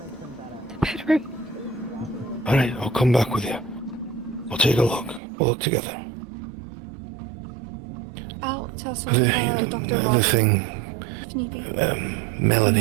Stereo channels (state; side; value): drops out; left; at 5.2 s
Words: The bedroom. Alright, I'll come back with you. We'll take a look. We'll look together. I'll tell The thing,